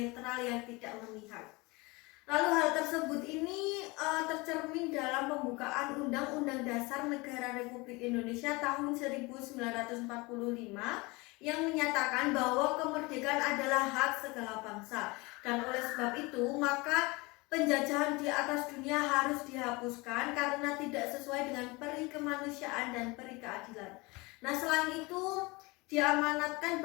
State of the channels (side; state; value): right; quieter; 24.8 dB